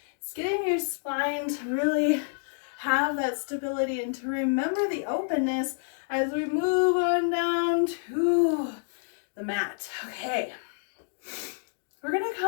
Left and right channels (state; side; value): silent; right; digital silence